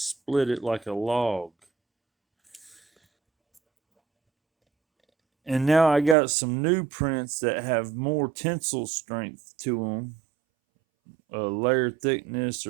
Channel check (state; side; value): drops out; left; at 6.2 s